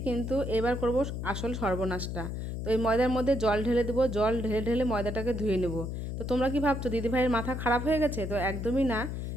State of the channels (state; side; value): noise; left; hum, 4 dB below the sound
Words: কিন্তু এবার করব আসল সর্বনাশটা। তো এই ময়দার মধ্যে জল ঢেলে দেবো, জল ঢেলে ঢেলে ময়দাটাকে ধুয়ে নেব। তো তোমরা কি ভাবছো দিদিভাইয়ের মাথা খারাপ হয়ে গেছে? তো একদমই না।